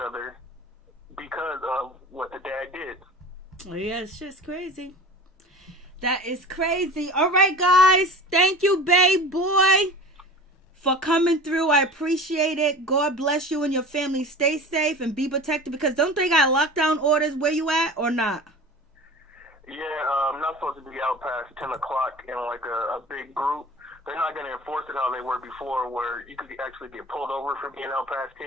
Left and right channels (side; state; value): both; normal; correlation 0.37